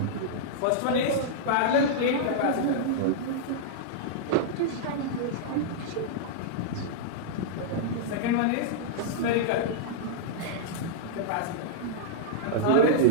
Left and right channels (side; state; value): both; different; correlation -0.02